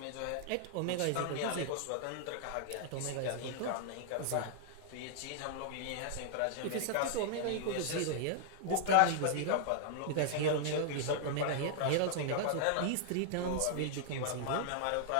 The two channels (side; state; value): both; different; correlation -0.01